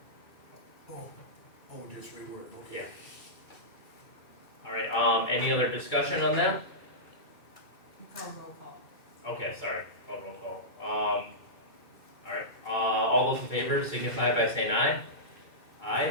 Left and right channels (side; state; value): right; late; 2.3 ms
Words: supported. Just reword, okay. Yeah. All right, any other discussion on that? You call roll call. Okay, sorry, call roll call. All right, all those in favor signify by saying aye.